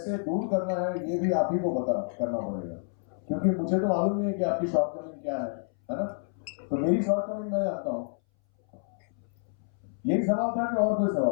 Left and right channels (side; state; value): right; silent; 59 dB below the other